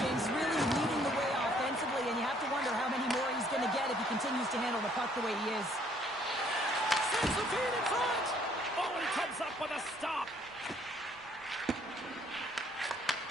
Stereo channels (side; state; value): right; noise; rumble, 28 dB below the sound